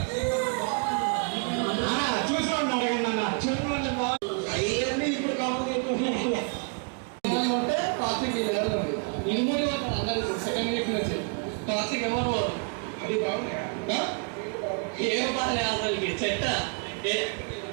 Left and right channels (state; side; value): quieter; left; 36.9 dB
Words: చూసుకోండి అడగండి అన్న చూడండి అవన్నీ ఇప్పుడు కావాలి ట్రాఫిక్ ఇనుమూరి అందరు సెకండ్ వీక్ నుంచి ట్రాఫిక్ ఎవరు అది బాగుంది ఏం పని అసలు చెట్ట